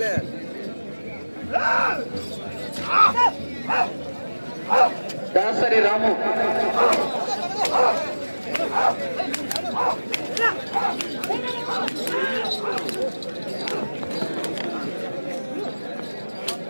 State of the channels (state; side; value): inverted; both; correlation -1.00